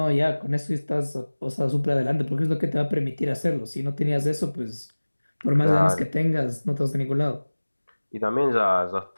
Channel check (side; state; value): both; inverted; correlation -1.00